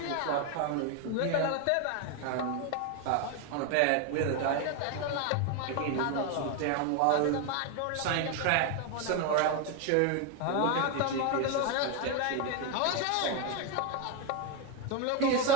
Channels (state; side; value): different; both; correlation 0.02